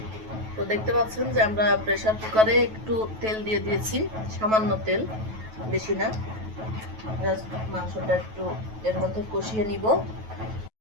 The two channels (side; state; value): left; late; 9.2 ms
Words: তো দেখতে পাচ্ছেন যে আমরা প্রেসার কুকারে একটু তেল দিয়ে দিয়েছি, সামান্য তেল, বেশি না। জাস্ট মাংসটা একটু এর মধ্যে কষিয়ে নিব।